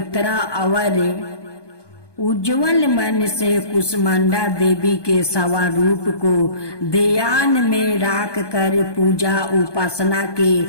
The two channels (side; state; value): right; late; 1.2 ms